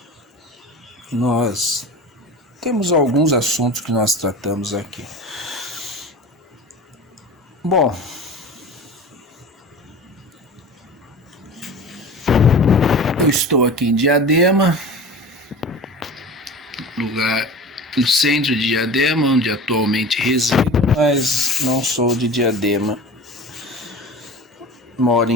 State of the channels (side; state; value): both; normal; correlation 0.35